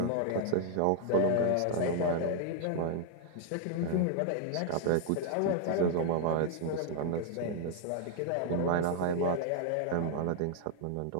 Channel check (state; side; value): different; both; correlation 0.00